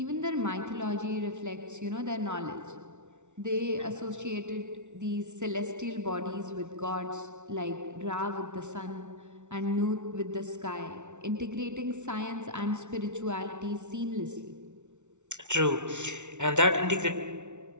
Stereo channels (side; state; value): left; late; 0.84 ms